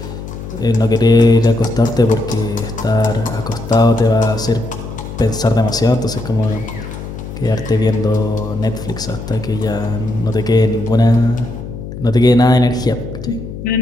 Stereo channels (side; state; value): left; noise; hum, 10 dB below the sound